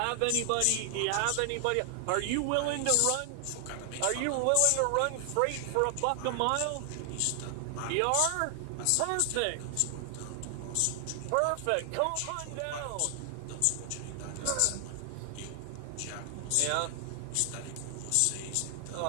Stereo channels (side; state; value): both; different; correlation 0.00